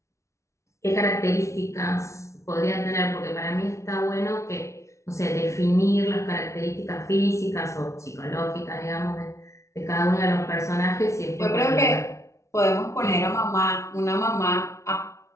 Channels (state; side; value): late; right; 0.14 ms